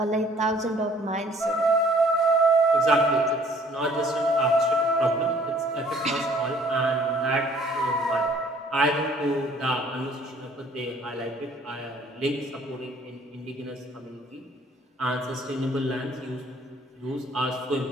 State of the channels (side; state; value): both; normal; correlation 0.57